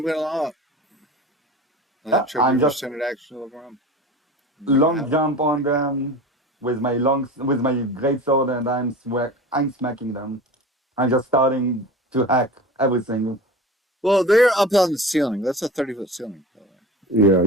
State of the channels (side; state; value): both; normal; correlation 0.34